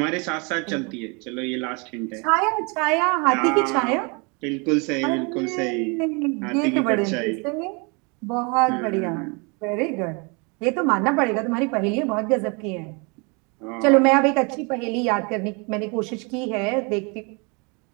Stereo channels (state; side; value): quieter; left; 31.6 dB